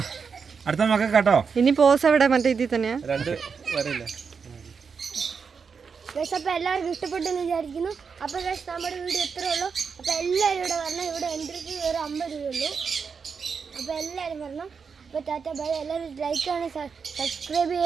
അടുത്ത മക്കൾ കേട്ടോ ഇനി പോസ് എവിടെ മറ്റേ ഇതിൽ തന്നെയാ 2 വരയില്ല അപ്പോൾ എല്ലാവർക്കും ഇഷ്ടപ്പെട്ടെന്ന് വിചാരിക്കുന്നു അപ്പോൾ നമ്മുടെ വീഡിയോ ഇത്രേ ഉള്ളൂ അപ്പോൾ എല്ലാവരും ഇവിടെ വരണം ഇവിടെ എൻട്രിക്ക് ഒരു 50 രൂപയുള്ളൂ അപ്പോൾ എല്ലാവരും വരണം അപ്പോൾ ടാറ്റ ബൈ എല്ലാവരും ലൈക്ക് ചെയ്യണം സബ്സ്ക്രൈബ്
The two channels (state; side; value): quieter; left; 5.8 dB